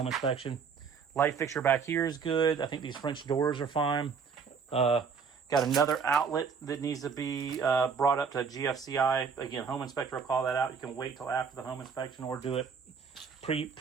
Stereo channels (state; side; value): quieter; left; 6.0 dB